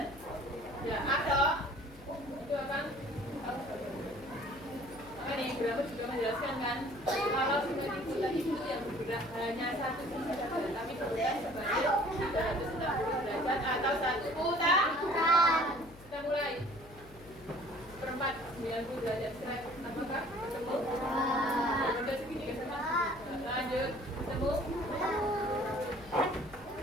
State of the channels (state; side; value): noise; left; hum, 21 dB below the sound